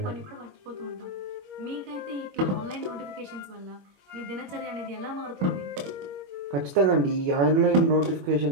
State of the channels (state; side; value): late; left; 21 ms